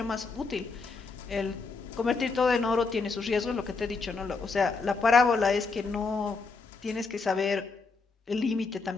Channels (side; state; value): right; quieter; 4.3 dB